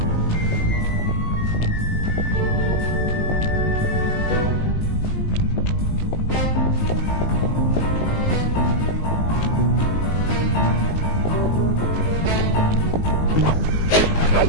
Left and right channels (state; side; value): late; right; 19 ms